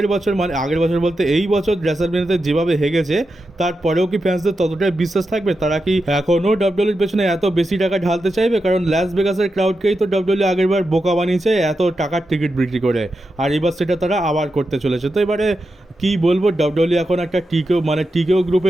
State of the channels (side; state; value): both; normal; correlation 0.88